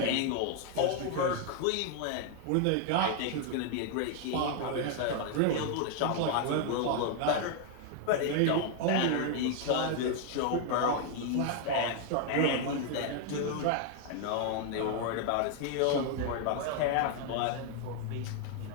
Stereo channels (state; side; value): different; both; correlation 0.00